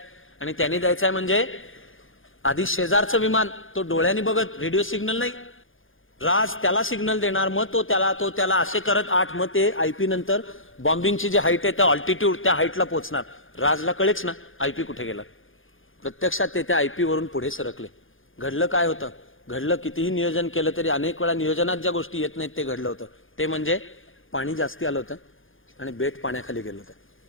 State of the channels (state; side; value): late; right; 0.58 ms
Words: आणि त्यांनी द्यायचा आहे म्हणजे आधी शेजारचं विमान तो डोळ्यांनी बघत, रेडिओ सिग्नल नाही. राज त्याला सिग्नल देणार, मग तो त्याला असे करत 8. मग ते आयपी नंतर बॉम्बिंगची जी हाईट आहे त्या ऑल्टिट्यूड त्या हाईटला पोहोचणार. राजला कळेच ना आयपी कुठे गेला. प्रत्यक्षात ते त्या आयपी वरून पुढे सरकले. घडलं काय होतं? घडलं कितीही नियोजन केलं तरी अनेक वेळा नियोजनात ज्या गोष्टी येत नाहीत ते घडलं होतं. ते म्हणजे पाणी जास्ती आलं होतं आणि बेट पाण्याखाली गेलं होतं,